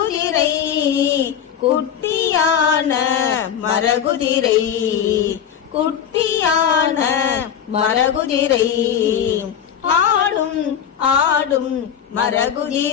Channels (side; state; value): right; quieter; 8.7 dB